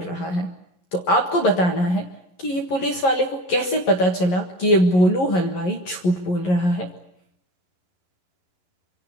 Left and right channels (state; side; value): late; right; 11 ms